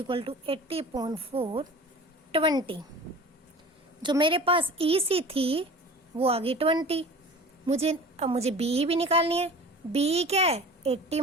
to 80/4 20। जो मेरे पास EC थी वो आ गई 20। अब मुझे BE भी निकालनी है। BE क्या है, 80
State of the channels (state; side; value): normal; both; correlation 0.40